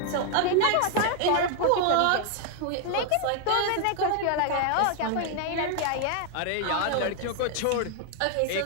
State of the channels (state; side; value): different; both; correlation 0.00